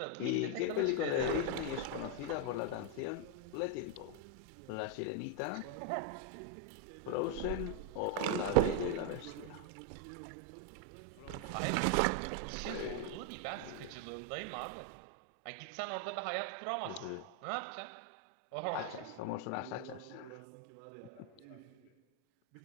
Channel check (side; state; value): both; different; correlation 0.00